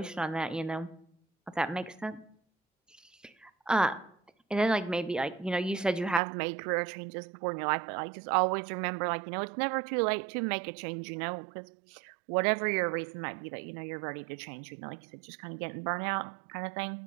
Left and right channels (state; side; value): drops out; left; at 6.2 s